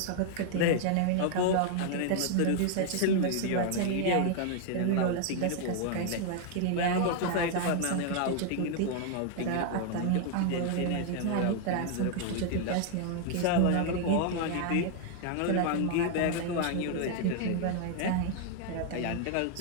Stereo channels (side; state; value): both; different; correlation 0.00